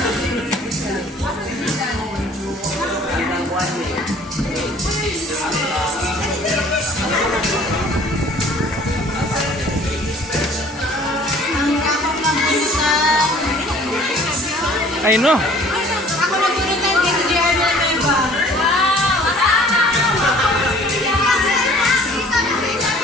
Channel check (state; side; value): normal; both; correlation 0.53